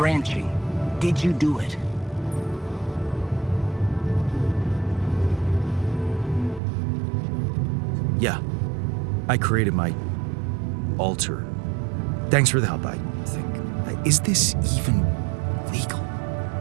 Did you do it? Yeah. I created my alter. Thanks for the help, I think. Is this even legal?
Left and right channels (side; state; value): left; drops out; at 6.6 s